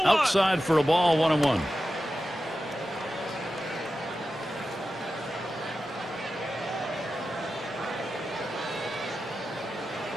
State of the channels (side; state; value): both; normal; correlation 0.92